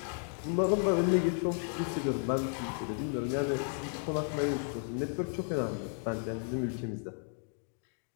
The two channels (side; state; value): right; silent; 55 dB below the other